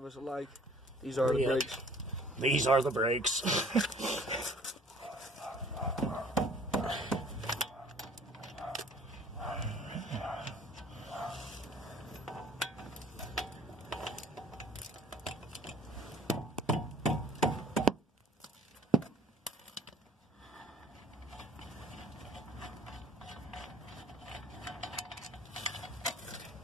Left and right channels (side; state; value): both; normal; correlation 0.53